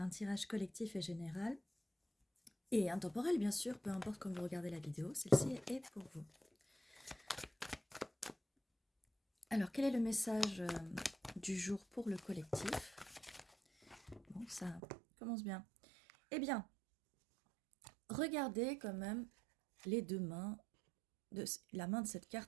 tirage collectif et général et intemporel bien sûr, peu importe quand vous regardez la vidéo, celle-ci est pour vous. Alors quel est le message du jour pour le collectif? Bon, ça commence bien. Eh bien, regardez quand même les deux mains, la main de cette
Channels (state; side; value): drops out; left; at 14.8 s